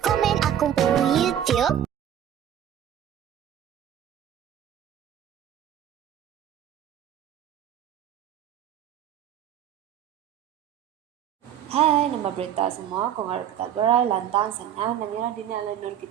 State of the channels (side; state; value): left; quieter; 10.3 dB